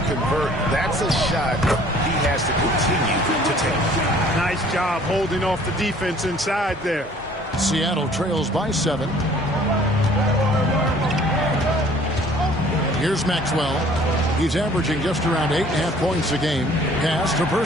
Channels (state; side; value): normal; both; correlation 0.54